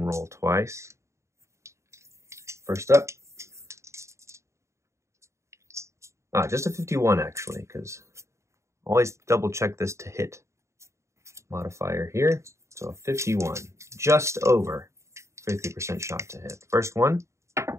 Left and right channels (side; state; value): left; late; 0.14 ms